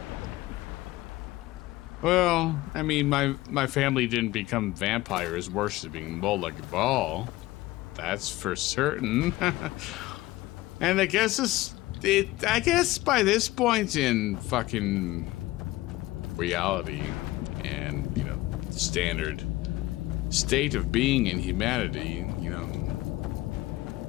Well, I mean, my family didn't become vampires worshipping Molag Bal. That's for certain. And I guess I guess by this point in fucking reality and, you know, standard state of being in humanity, you know,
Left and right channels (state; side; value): quieter; right; 18.1 dB